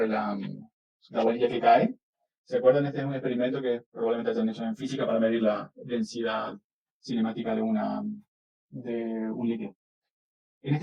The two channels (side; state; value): both; identical; correlation 1.00